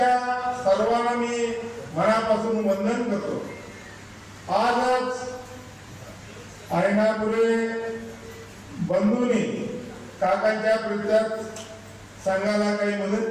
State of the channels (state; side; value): identical; both; correlation 1.00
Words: सर्वांना मी मनापासून वंदन करतो. आजच ऐनापुरे बंधूंनी काकांच्या प्रत्येक संघाला काही मदत